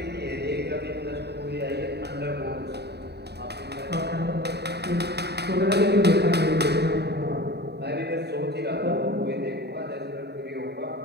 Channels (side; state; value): left; late; 0.48 ms